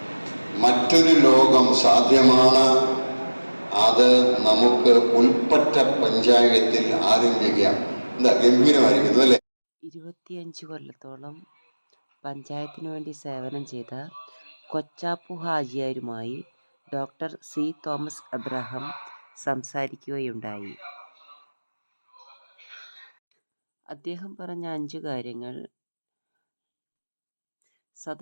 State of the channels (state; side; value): inverted; both; correlation -1.00